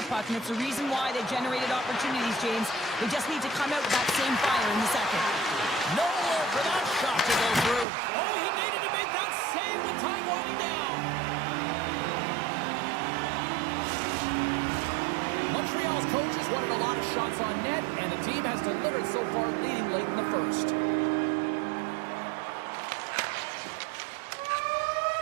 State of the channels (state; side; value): drops out; left; at 7.9 s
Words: puck, and it's the reason why they generated opportunities, James. They just need to come out with that same fire in the second. Nowhere for that shot to go through. Oh, he needed to make that save with time winding down. Montreal's start leading late in the first.